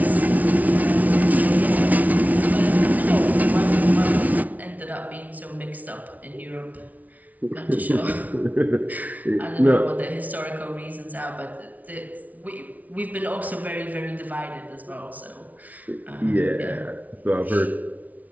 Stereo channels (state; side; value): late; left; 0.073 ms